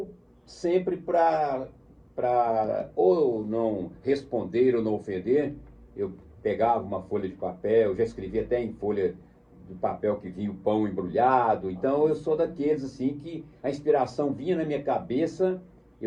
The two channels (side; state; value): both; identical; correlation 1.00